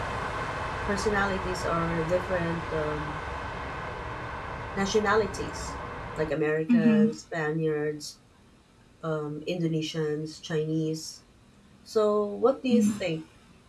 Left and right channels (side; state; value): both; identical; correlation 1.00